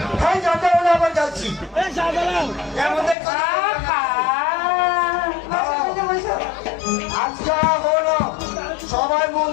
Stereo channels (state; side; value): drops out; right; at 3.2 s